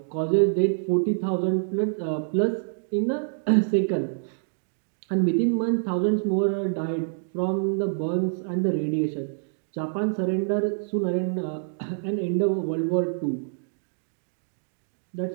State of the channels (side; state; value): left; silent; digital silence